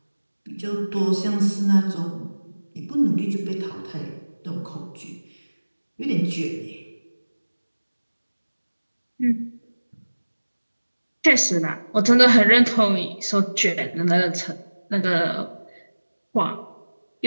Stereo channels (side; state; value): both; inverted; correlation -1.00